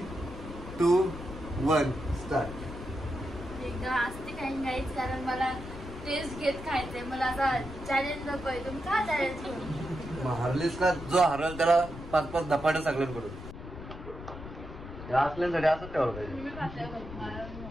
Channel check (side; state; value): left; noise; rumble, 12 dB below the sound